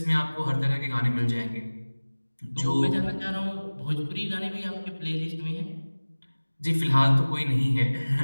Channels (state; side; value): inverted; both; correlation -1.00